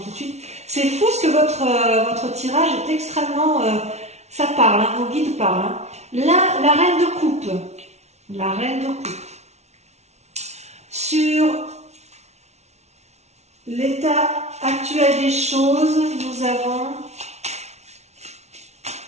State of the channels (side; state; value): left; late; 0.32 ms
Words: de suite. C'est fou ce que votre tirage est extrêmement... ça parle, hein, vos guides parlent. Hein. Là, la reine de coupe. La reine de coupe. Sur l'état actuel des choses, nous avons...